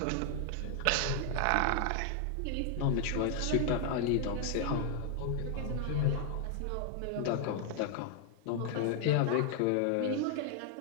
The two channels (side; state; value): both; different; correlation 0.00